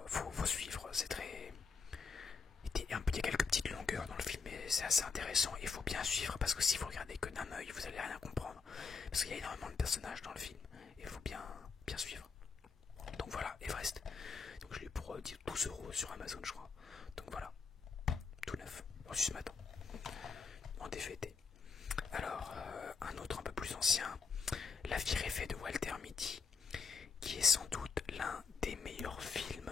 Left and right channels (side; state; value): right; quieter; 5.1 dB